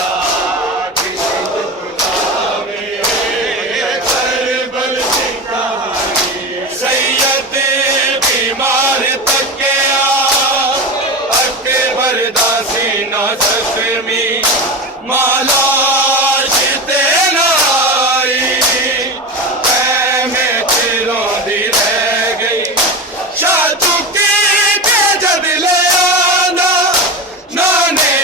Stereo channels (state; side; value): normal; both; correlation 0.23